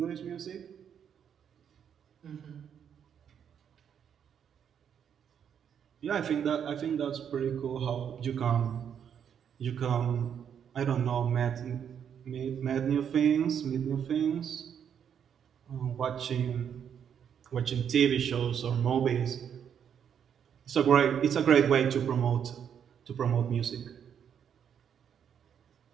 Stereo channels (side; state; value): left; quieter; 8.3 dB